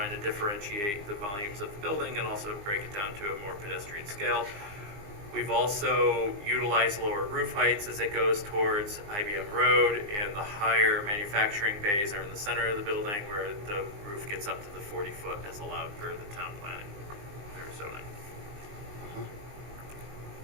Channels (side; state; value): left; late; 20 ms